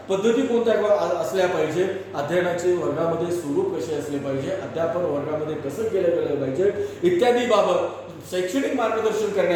पद्धती कोणत्या असल्या पाहिजे, अध्ययनाचे वर्गामध्ये स्वरूप कसे असले पाहिजे, अध्यापन वर्गामध्ये कसं केलं गेलं पाहिजे इत्यादी बाबत शैक्षणिक मार्गदर्शन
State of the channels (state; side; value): identical; both; correlation 1.00